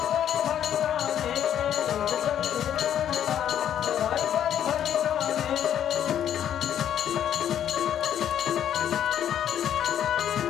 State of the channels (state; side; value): quieter; right; 10.1 dB